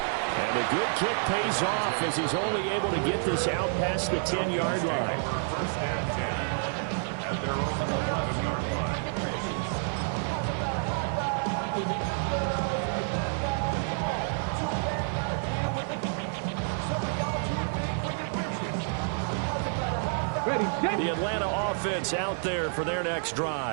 And the good kick pays off as he's only able to get this out past the 10-yard line. First and 10 at their own 11-yard line. Ready, set. The Atlanta offense out there for their next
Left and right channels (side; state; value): left; silent; 59 dB below the other